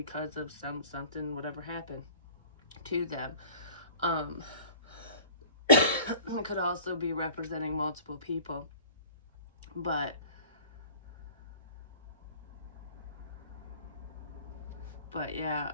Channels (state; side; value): inverted; both; correlation -0.46